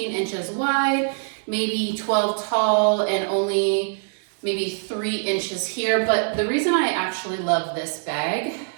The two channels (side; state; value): left; silent; digital silence